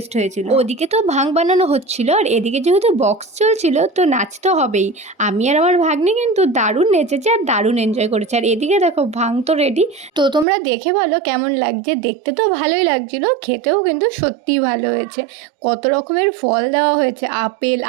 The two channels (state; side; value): drops out; left; at 10.5 s